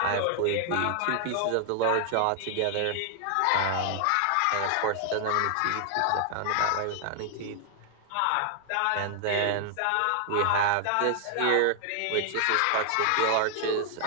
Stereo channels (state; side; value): different; both; correlation -0.01